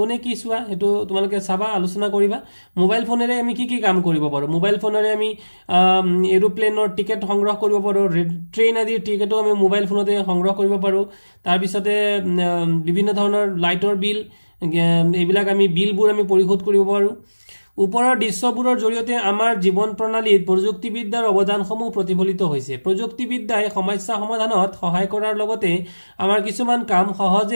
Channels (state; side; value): inverted; both; correlation -1.00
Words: কি চোৱা এটো তোমালোকে চাবা আলোচনা কৰিবা মোবাইল ফোনেৰে আমি কি কাম কৰিব পাৰো মোবাইল ফোনেৰে আমি এৰোপ্লেনৰ টিকেট সংগ্ৰহ কৰিব পাৰো ট্ৰেইন আদিৰ টিকেটো আমি মোবাইল ফোনতে সংগ্ৰহ কৰিব পাৰো তাৰ পিছতে বিভিন্ন ধৰণৰ লাইটৰ বিল এইবিলাক আমি বিলবোৰ আমি পৰিশোধ কৰিব পাৰো ওপৰৰ দৃশ্যবোৰৰ জৰিয়তে আমাৰ জীৱন প্ৰণালীত প্ৰযুক্তিবিদ্যাৰ অৱদানসমূহ প্ৰতিফলিত হৈছে প্ৰযুক্তিবিদ্যাই সমস্যা সমাধানত সহায় কৰাৰ লগতে আমাৰ কিছুমান কাম